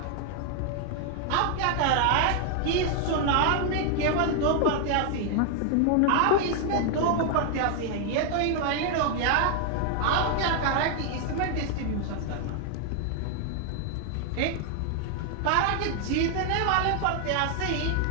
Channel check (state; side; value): different; both; correlation 0.00